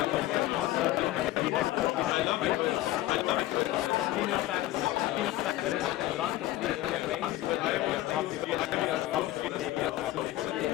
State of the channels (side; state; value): right; quieter; 15.9 dB